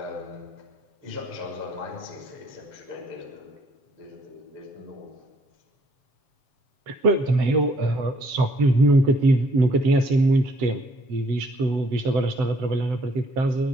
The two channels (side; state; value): left; late; 7.8 ms